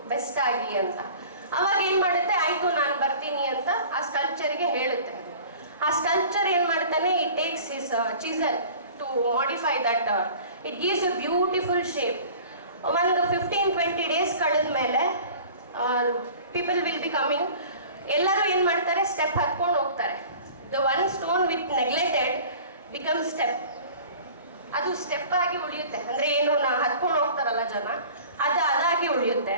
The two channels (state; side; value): inverted; both; correlation -0.44